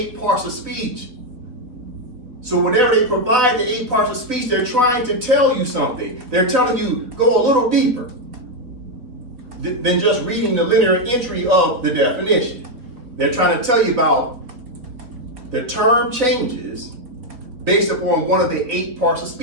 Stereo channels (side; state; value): left; late; 3.9 ms